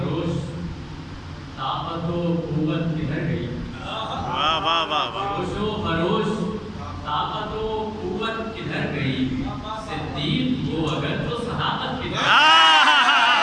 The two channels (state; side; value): identical; both; correlation 1.00